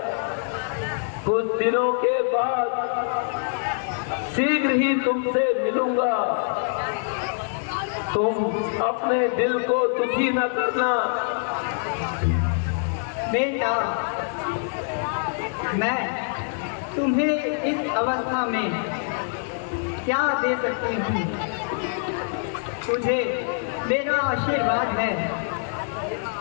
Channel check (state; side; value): silent; right; 62 dB below the other